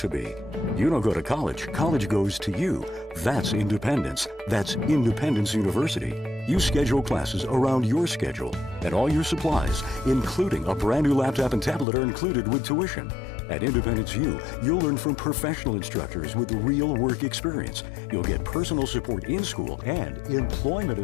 be. You don't go to college. College goes to you. That's independence. That's Independence University. You schedule classes around your schedule, and all your supplies, including a brand new laptop and tablet, are included with tuition. At Independence U, you'll learn from professional instructors with real work experience. You'll get personal support in school and employment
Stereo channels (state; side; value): drops out; right; at 11.9 s